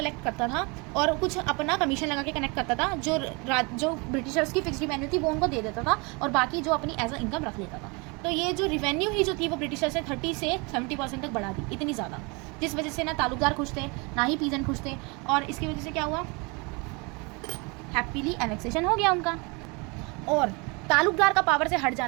करता था और कुछ अपना कमीशन लगा के कनेक्ट करता था। जो ब्रिटिशर्स की फिक्स रिवेन्यू थी वो उनको दे देता था और बाकी जो अपनी एज अ इनकम रख लेता था। तो ये जो रिवेन्यू ही जो थी वो ब्रिटिशर्स ने 30 से 70% तक बढ़ा दी, इतनी ज़्यादा, जिस वजह से ना तालुकदार खुश थे ना ही पीजेंट खुश थे। और इसकी वजह से क्या हुआ, हैप्पीली एनेक्सेशन हो गया उनका। और तालुकदार का पावर से हट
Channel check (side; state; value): left; quieter; 29.3 dB